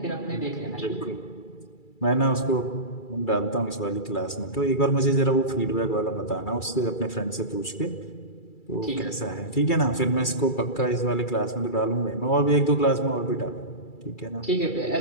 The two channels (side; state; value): right; late; 2.3 ms